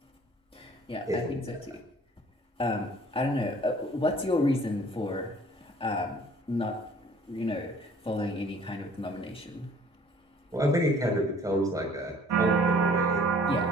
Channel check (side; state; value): both; normal; correlation 0.54